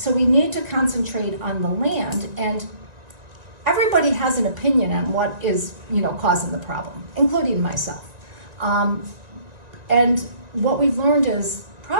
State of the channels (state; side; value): late; left; 1.9 ms